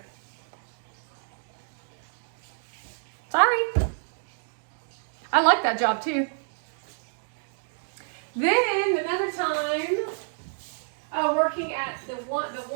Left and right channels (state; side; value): silent; left; digital silence